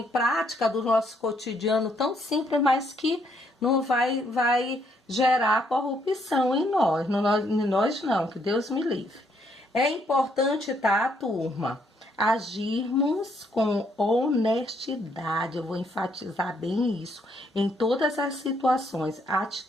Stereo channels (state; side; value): normal; both; correlation 0.71